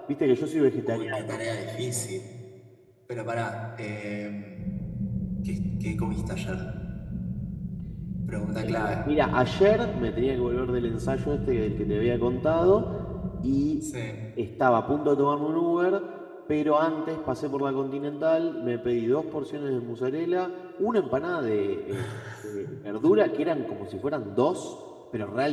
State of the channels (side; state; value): both; identical; correlation 1.00